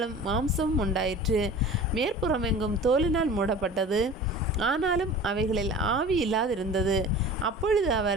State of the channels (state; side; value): normal; both; correlation 0.39